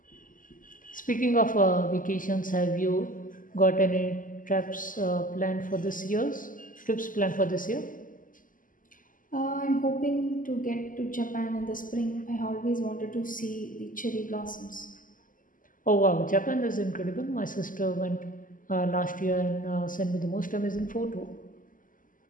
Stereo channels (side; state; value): right; late; 0.39 ms